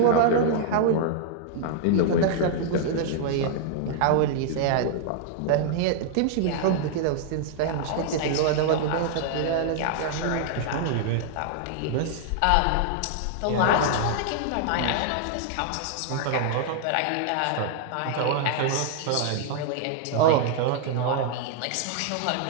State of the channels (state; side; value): different; both; correlation -0.01